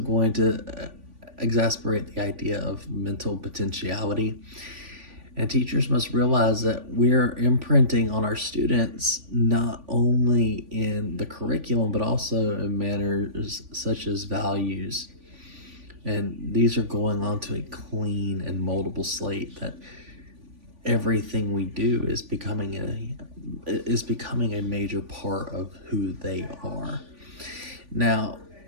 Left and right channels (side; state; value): left; late; 3.5 ms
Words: to exasperate the idea of mental potentiality. And teachers must realize that we're imprinting on our students not only in the curriculum, but also in manners such as values. And these are going onto a clean and moldable slate that everything we do is becoming a major part of who they are. Now,